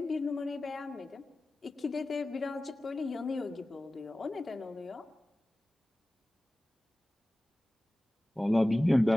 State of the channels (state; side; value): normal; both; correlation 0.97